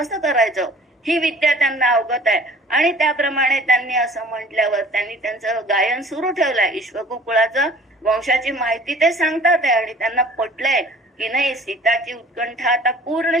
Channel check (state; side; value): normal; both; correlation 0.48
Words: करायचं ही विद्या त्यांना अवगत आहे. आणि त्याप्रमाणे त्यांनी असं म्हटल्यावर त्यांनी त्यांचं गायन सुरू ठेवलंय. इक्ष्वाकू कुळाचं वंशाची माहिती ते सांगतात आहे आणि त्यांना पटलंय की नाही, सीताची उत्कंठा आता पूर्ण